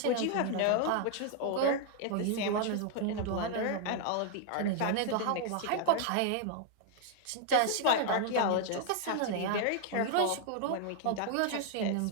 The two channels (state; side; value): different; both; correlation 0.00